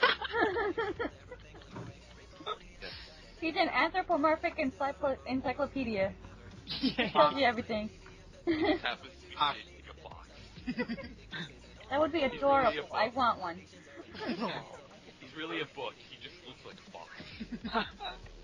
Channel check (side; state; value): both; identical; correlation 1.00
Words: He's an anthropomorphic encyclopedia. He tells you everything. It happens to be shaped like a box. That would be adorable. I want one. He's really a book. He just looks like a box.